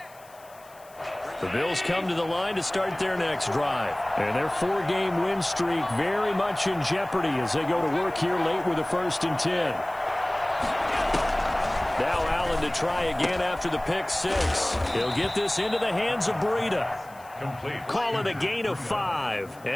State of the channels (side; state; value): left; noise; hiss, 25 dB below the sound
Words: The Bills come to the line to start their next drive. And their 4-game win streak very much in jeopardy as they go to work here late with a 1st and 10. Now Allen to try again after the pick 6. He'll get this into the hands of Breida. Complete. Call it a gain of 5,